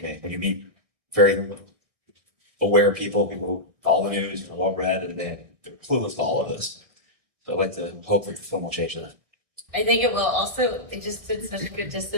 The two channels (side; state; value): left; late; 1.6 ms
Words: When you meet very aware people who follow the news, are well read, and they're clueless to all of this. So I'd like to hope that the film will change that. I think it will. Also, it just did such good